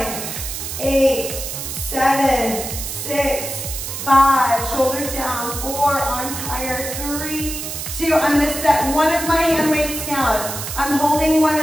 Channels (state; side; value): noise; right; hiss, 6 dB below the sound